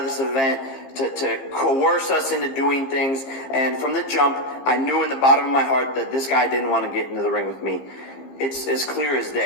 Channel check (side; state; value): right; late; 15 ms